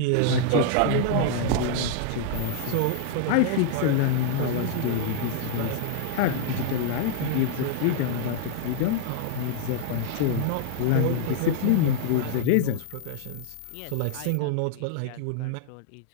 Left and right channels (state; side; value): different; both; correlation -0.01